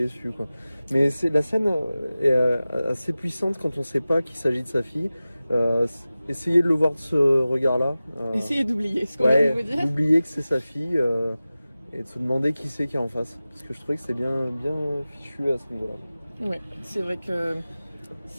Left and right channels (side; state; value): both; inverted; correlation -0.96